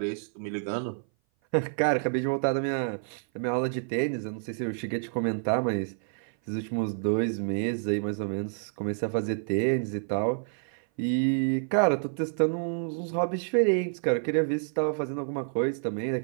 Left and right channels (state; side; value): silent; left; 57 dB below the other